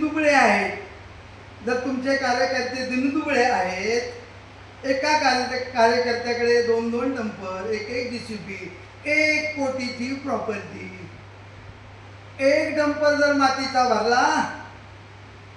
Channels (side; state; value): both; identical; correlation 1.00